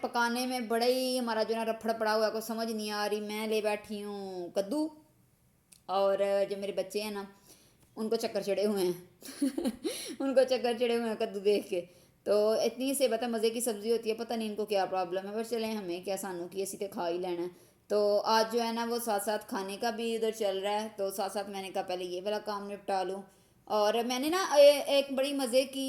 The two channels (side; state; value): both; identical; correlation 1.00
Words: پکانے میں بڑا ہی ہمارا جو ہے نا رپھڑ پڑا ہوا ہے، کوئی سمجھ نہیں آ رہی، میں لے بیٹھی ہوں کدو، اور جو میرے بچے ہیں نا ان کو چکر چڑھے ہوئے ہیں ان کو چکر چڑھے ہوئے ہیں کدو دیکھ کے، تو اتنی سے پتہ مزے کی سبزی ہوتی ہے، پتہ نہیں ان کو کیا پرابلم ہے، پر چلیں ہمیں کیا، سانوں کی اسی تے کھا ہی لینا ہے، تو آج جو ہے نا وہ ساتھ ساتھ کھانے کا بھی ادھر چل رہا ہے، تو ساتھ ساتھ میں نے کہا پہلے یہ والا کام نپٹا لوں، اور میں نے نا ایک بڑی مزے